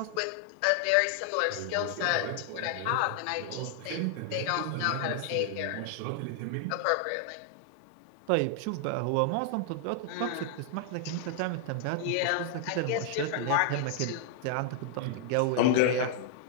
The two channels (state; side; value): different; both; correlation 0.00